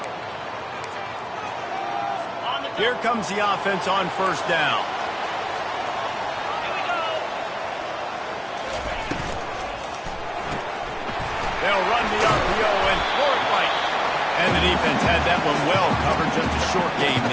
Here comes the offense on first down. They'll run the RPO and throw it right. And the defense had that one well covered, just a short game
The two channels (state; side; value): identical; both; correlation 1.00